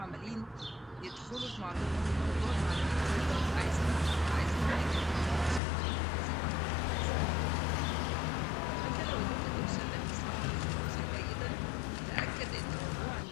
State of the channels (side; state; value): right; drops out; at 5.6 s